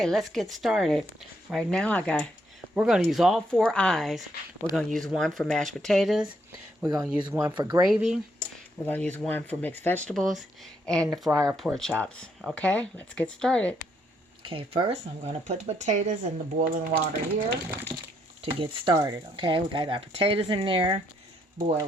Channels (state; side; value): normal; both; correlation 0.74